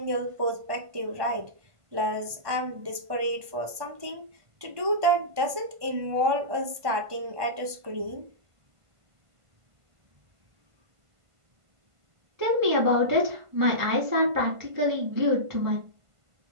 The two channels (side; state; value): left; late; 1.5 ms